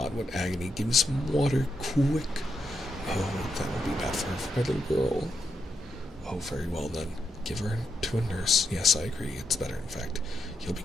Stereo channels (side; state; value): both; normal; correlation 0.83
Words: what agony. Give me some water, quick. Oh, that will be bad for her, for my little girl. Oh, very well then. Give her to a nurse. Yes, I agree. It's better, in fact. He'll be